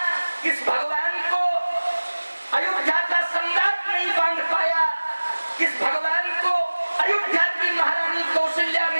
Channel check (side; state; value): both; inverted; correlation -1.00